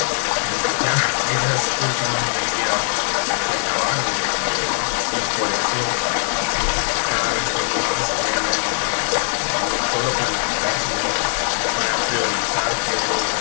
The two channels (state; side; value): silent; right; digital silence